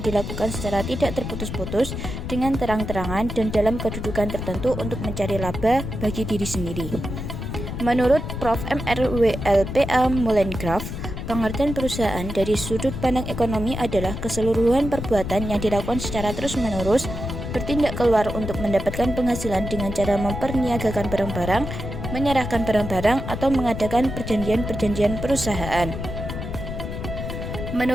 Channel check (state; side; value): noise; left; rumble, 6 dB below the sound